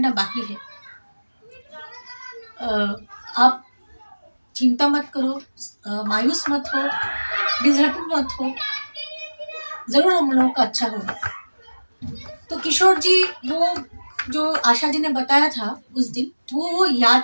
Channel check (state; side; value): inverted; both; correlation -1.00